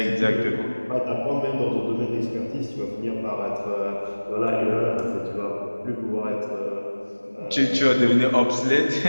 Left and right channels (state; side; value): inverted; both; correlation -1.00